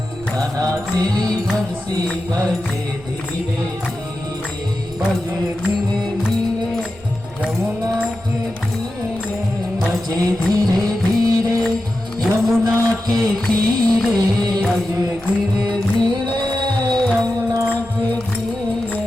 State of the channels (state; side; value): noise; right; rumble, 23 dB below the sound